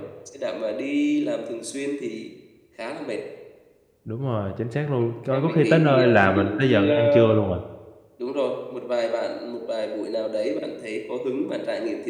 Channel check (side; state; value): both; identical; correlation 1.00